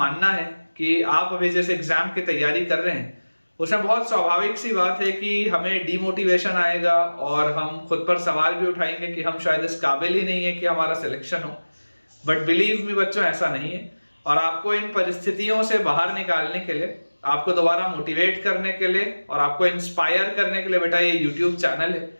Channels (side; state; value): both; inverted; correlation -1.00